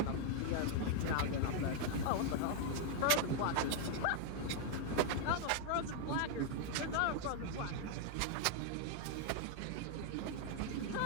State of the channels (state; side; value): different; both; correlation 0.00